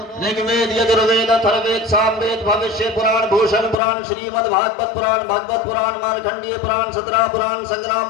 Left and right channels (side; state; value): right; drops out; at 3.8 s